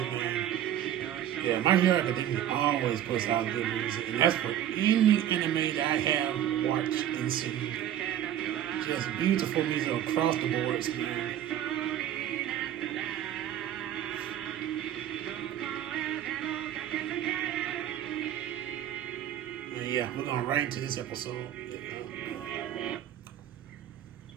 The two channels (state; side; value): quieter; left; 11.1 dB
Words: man. Yeah, My Hero Academia always puts out good music, and that's for any anime that I have watched and seen. Just beautiful music across the boards, man. And yeah, we're going right into this episode.